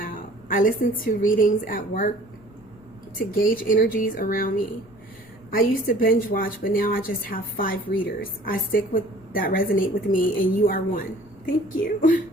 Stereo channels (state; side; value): noise; left; rumble, 27 dB below the sound